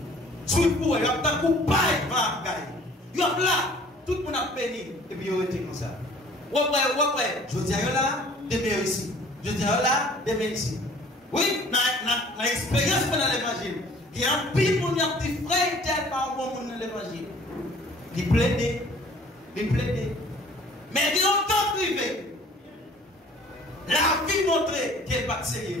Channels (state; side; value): normal; both; correlation 0.52